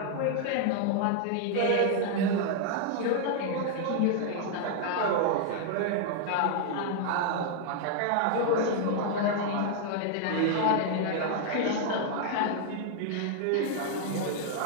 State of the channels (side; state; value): both; different; correlation 0.00